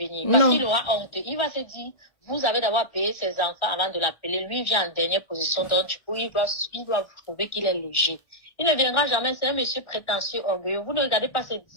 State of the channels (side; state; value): right; late; 1.4 ms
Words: Parce qu'il aura honte. Il va se dire, vous avez d'abord payé ses enfants avant de l'appeler. Lui, il vient en dernière position. Donc, du coup, il doit prouver qu'il est léger. Il ne viendra jamais. C'est un monsieur prétentieux, orgueilleux. Vous ne regardez pas